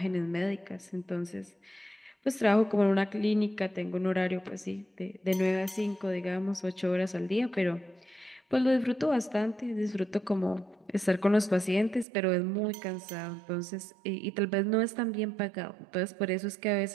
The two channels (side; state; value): left; drops out; at 12.1 s